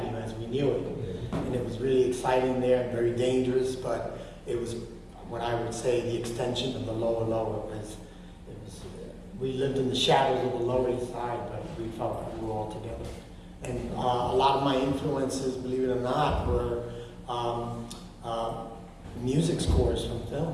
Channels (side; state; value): both; identical; correlation 1.00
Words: as we knew it. And it was really exciting there and very dangerous, but it was what I would say the extension of the lower. We lived in the shadows of the Lower East Side, but we felt like we were all together. And a lot of my influences, believe it or not, were music scores from